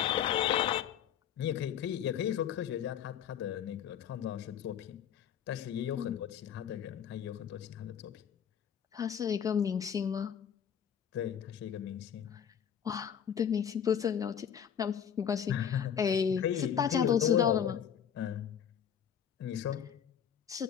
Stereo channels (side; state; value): right; quieter; 8.6 dB